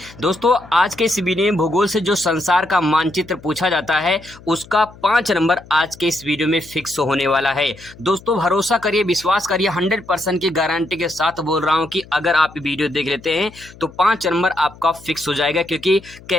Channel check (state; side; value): noise; left; hum, 21 dB below the sound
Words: दोस्तों, आज के इस वीडियो में भूगोल से जो संसार का मानचित्र पूछा जाता है उसका 5 नंबर आज के इस वीडियो में फिक्स होने वाला है। दोस्तों, भरोसा करिए, विश्वास करिए, 100% की गारंटी के साथ बोल रहा हूं कि अगर आप वीडियो देख लेते हैं तो 5 नंबर आपका फिक्स हो जाएगा। क्योंकि